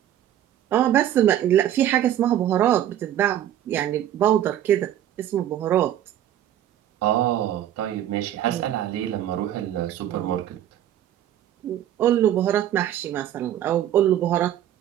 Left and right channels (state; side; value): quieter; left; 11.5 dB